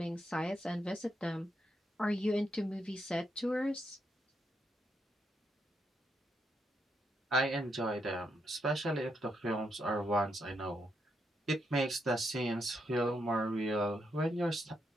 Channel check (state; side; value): normal; both; correlation 0.80